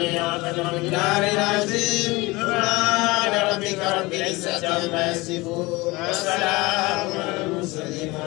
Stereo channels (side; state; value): right; quieter; 22.7 dB